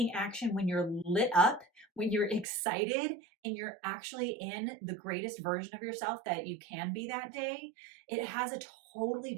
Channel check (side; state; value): left; drops out; at 2.5 s